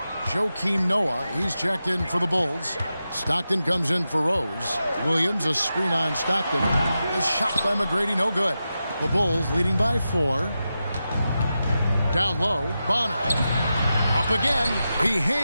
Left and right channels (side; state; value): both; inverted; correlation -0.90